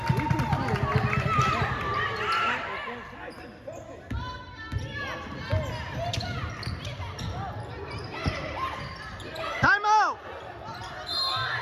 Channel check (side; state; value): both; identical; correlation 1.00